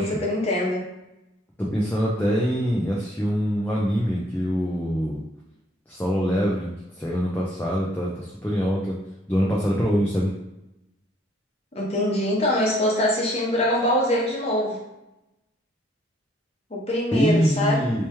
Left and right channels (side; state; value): both; normal; correlation 0.64